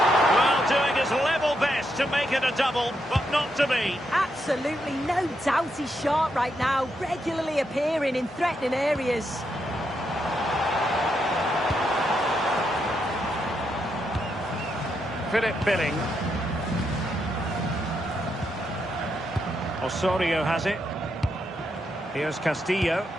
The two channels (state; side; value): normal; both; correlation 0.81